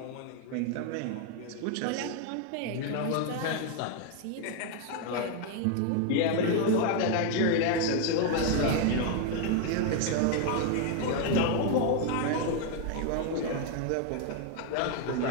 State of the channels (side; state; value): both; different; correlation 0.00